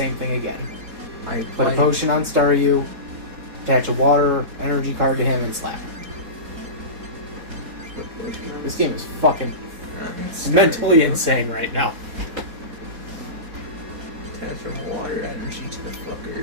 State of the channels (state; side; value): late; left; 3.8 ms